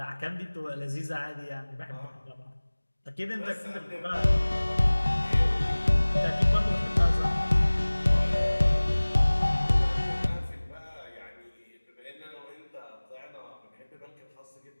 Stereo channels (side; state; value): both; inverted; correlation -1.00